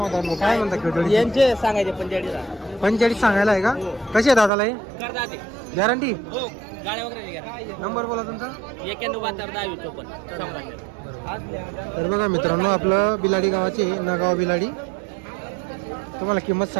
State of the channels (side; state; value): left; drops out; at 4.5 s